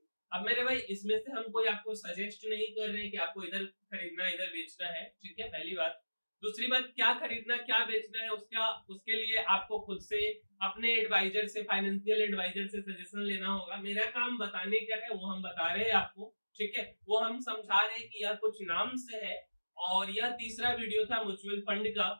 अब मेरे भाई इसमें से हम कोई आपको सजेस्ट नहीं कर रहे हैं कि आपको इधर खरीदना इधर बेचना है, ठीक है, पहली बात। दूसरी बात, क्या खरीदना क्या बेचना है उसके लिए आपको खुद से अपने एडवाइजर से, फाइनेंशियल एडवाइजर से सजेशन लेना होगा। मेरा काम बताने का है, वो हम बता रहे हैं आपको, ठीक है, वो हम समझा रहे हैं कि यह कुछ नाम से है। और यह तीसरा वीडियो था म्यूचुअल फंड का।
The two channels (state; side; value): inverted; both; correlation -1.00